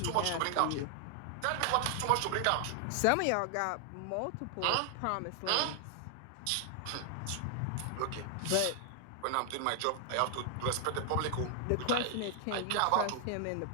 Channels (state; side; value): different; both; correlation 0.00